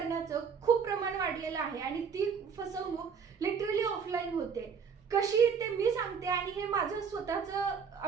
खूप प्रमाण वाढलेलं आहे आणि ती फसवणूक लिटरली ऑफलाईन होते. कशी ते मी सांगते आणि हे माझं स्वतःचा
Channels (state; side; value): quieter; left; 6.3 dB